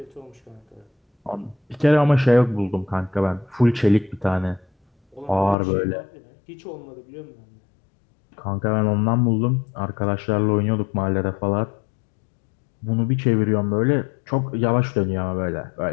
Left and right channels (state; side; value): drops out; right; at 5.6 s